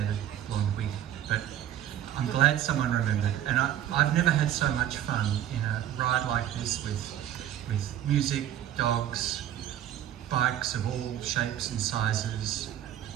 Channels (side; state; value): left; quieter; 11.3 dB